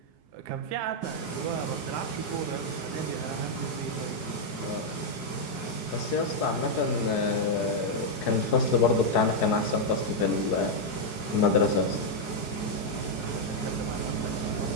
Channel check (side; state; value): right; late; 4.7 ms